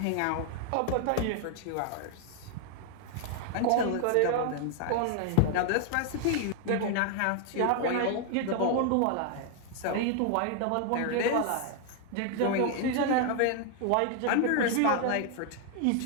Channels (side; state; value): both; different; correlation 0.00